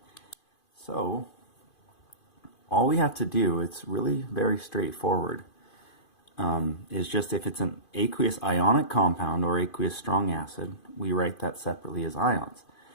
So all we have to do, it's really very straightforward, is just if it's an aqueous ionic compound or aqueous strong acid, we write that separately as ions,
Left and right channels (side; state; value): right; late; 2.5 ms